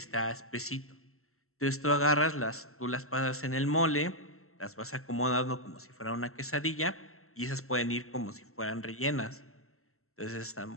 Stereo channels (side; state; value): right; late; 0.63 ms